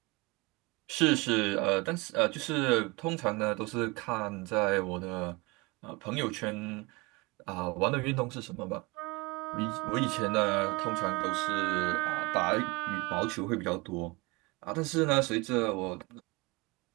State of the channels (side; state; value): left; quieter; 25.2 dB